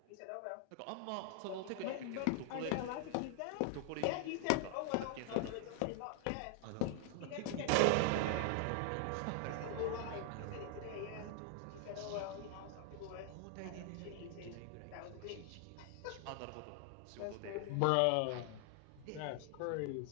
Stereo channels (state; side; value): different; both; correlation 0.00